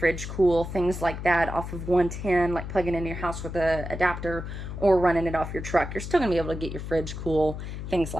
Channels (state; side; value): noise; left; hum, 7 dB below the sound